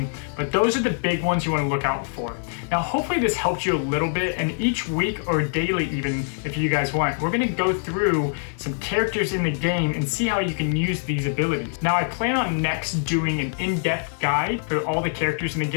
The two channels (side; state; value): right; silent; digital silence